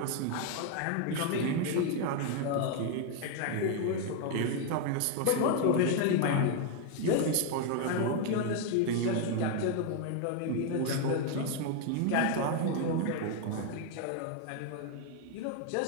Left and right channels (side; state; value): both; different; correlation 0.01